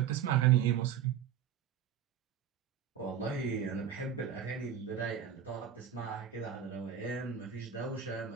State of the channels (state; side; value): quieter; left; 8.6 dB